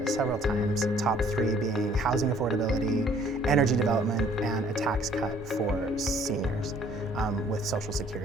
several times, top three being housing affordability, energy development, and a tax cut for seniors with Social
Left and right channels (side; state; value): both; normal; correlation 0.58